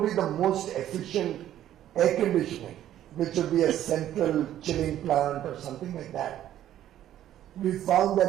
the most efficient air conditioning, which would be a central chilling plant or something like that, we found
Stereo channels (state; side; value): quieter; left; 12.0 dB